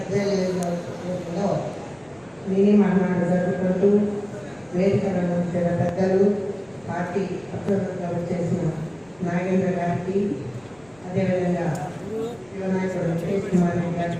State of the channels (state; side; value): noise; left; rumble, 30 dB below the sound